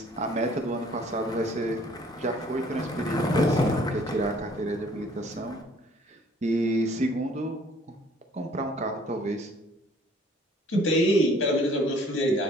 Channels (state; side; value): normal; both; correlation 0.57